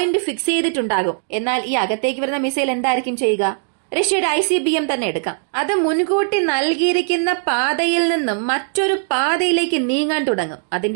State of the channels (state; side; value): silent; left; digital silence